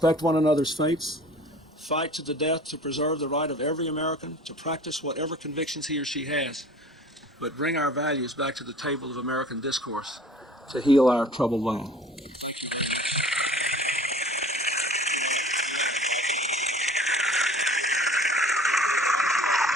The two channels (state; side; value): normal; both; correlation 0.46